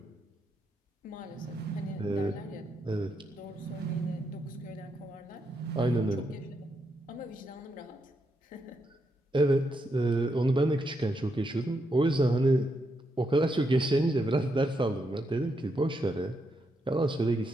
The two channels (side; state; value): both; normal; correlation 0.81